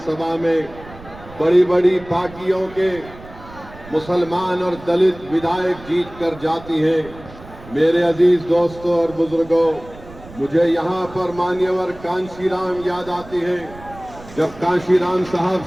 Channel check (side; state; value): right; noise; rumble, 18 dB below the sound